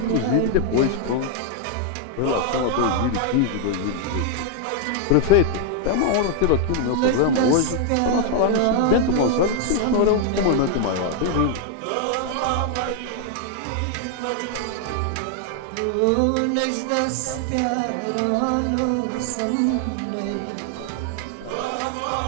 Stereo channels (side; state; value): both; different; correlation 0.00